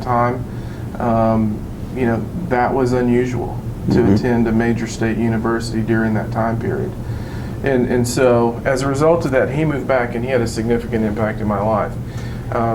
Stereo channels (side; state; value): both; identical; correlation 1.00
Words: time, that was unusual to attend a major state university during that time period. And so as a result of that, he moved back, and he had a significant impact in my life.